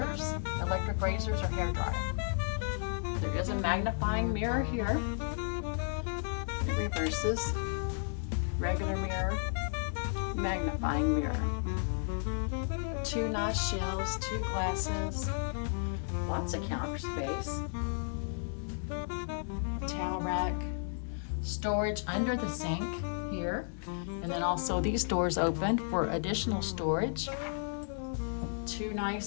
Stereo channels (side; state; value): right; silent; digital silence